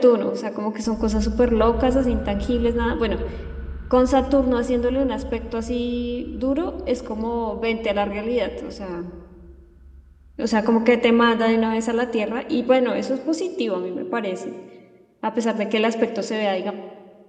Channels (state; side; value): identical; both; correlation 1.00